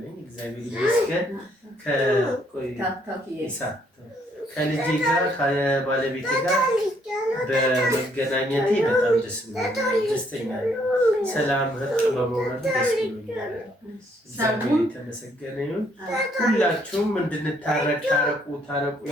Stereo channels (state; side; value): normal; both; correlation 0.68